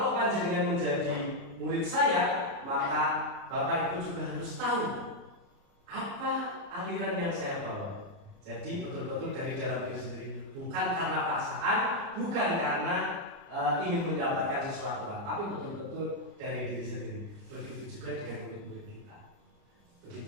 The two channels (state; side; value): late; left; 29 ms